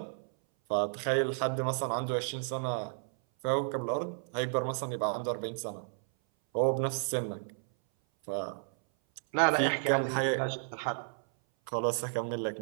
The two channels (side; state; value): left; silent; 56 dB below the other